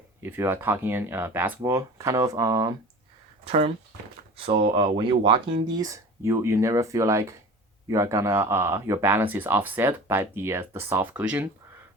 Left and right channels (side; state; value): both; normal; correlation 0.37